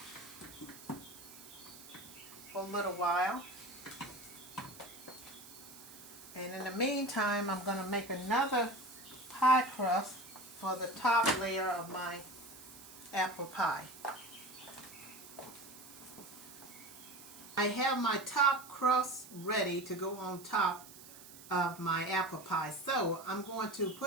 for a little while. And in the meantime, I'm going to make another pie crust for the top layer of my apple pie. I have my top crust ready to go on top of my apple pie. So I'm going to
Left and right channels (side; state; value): right; noise; hiss, 17 dB below the sound